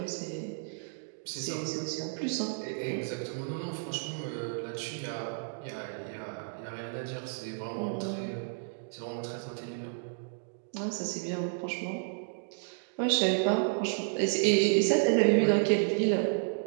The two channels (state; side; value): silent; left; digital silence